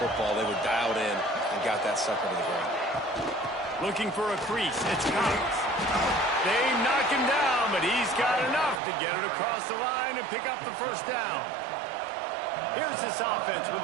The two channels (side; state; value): left; drops out; at 8.8 s